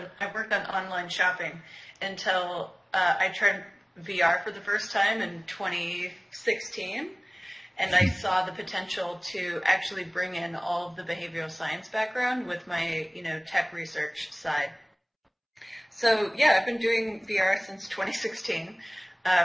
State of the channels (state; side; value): identical; both; correlation 1.00